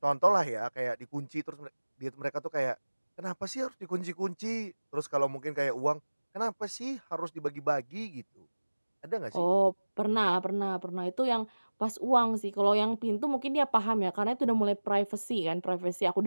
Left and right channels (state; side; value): inverted; both; correlation -1.00